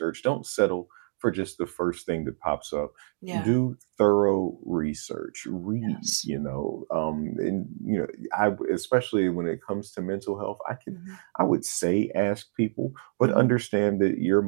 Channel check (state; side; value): silent; left; digital silence